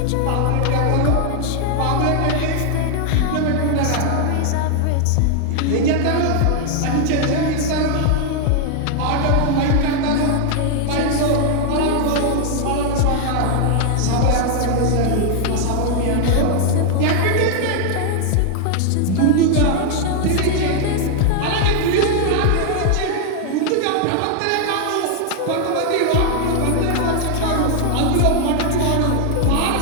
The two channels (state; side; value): different; both; correlation 0.00